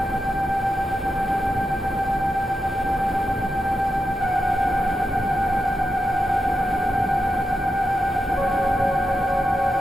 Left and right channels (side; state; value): both; normal; correlation 0.87